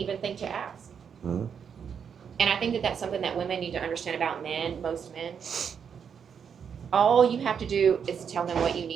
think to ask. Mhm. And I think that that's something that women need to understand about men, most men. All you have to do is tell them what you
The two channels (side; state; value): left; quieter; 7.2 dB